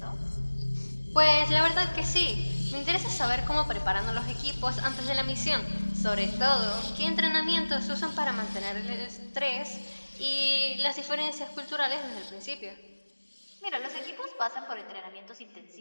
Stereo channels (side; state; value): both; inverted; correlation -1.00